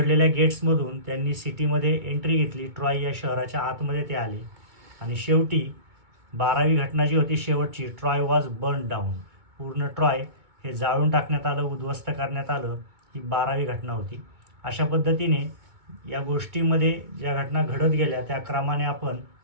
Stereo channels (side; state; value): left; late; 2.2 ms